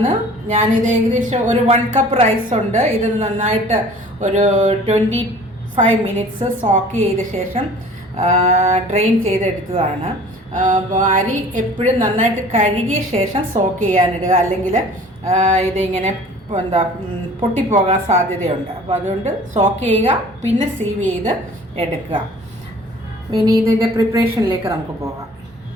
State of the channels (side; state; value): both; normal; correlation 0.47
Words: ഞാനിത് ഏകദേശം ഒരു 1 കപ്പ് റൈസ് ഉണ്ട്. ഇത് നന്നായിട്ട് ഒരു 25 മിനിറ്റ്സ് സോക്ക് ചെയ്ത ശേഷം ഡ്രെയിൻ ചെയ്തെടുത്തതാണ്. അരി എപ്പോഴും നന്നായിട്ട് കഴുകിയ ശേഷം സോക്ക് ചെയ്യാനിടുക, അല്ലെങ്കിൽ ഇതിങ്ങനെ പൊട്ടിപ്പോകാൻ സാധ്യതയുണ്ട്. അപ്പോൾ അതുകൊണ്ട് സോക്ക് ചെയ്യുക, പിന്നെ സീവ് ചെയ്ത് എടുക്കുക. ഇനി ഇതിൻ്റെ പ്രിപ്പറേഷനിലേക്ക് നമുക്ക് പോകാം.